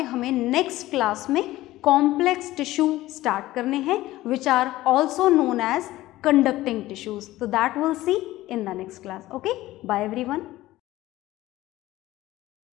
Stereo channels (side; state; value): right; quieter; 16.5 dB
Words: हमें नेक्स्ट क्लास में कॉम्प्लेक्स टिश्यू स्टार्ट करने हैं, which are also known as conducting tissues. तो that will see in the next class. Okay, bye everyone.